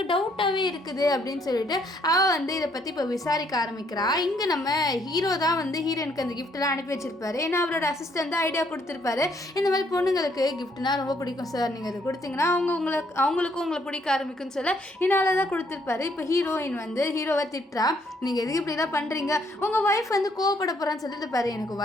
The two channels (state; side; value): normal; both; correlation 0.69